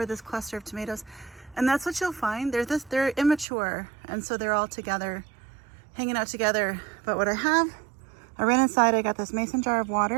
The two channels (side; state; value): left; drops out; at 3.5 s